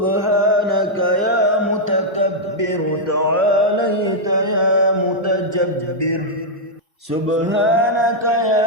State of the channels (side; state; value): both; normal; correlation -0.05